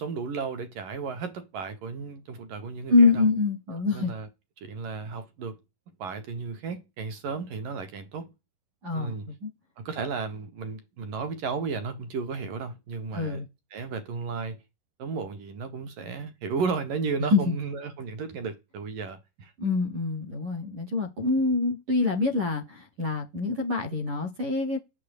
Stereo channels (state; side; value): late; left; 11 ms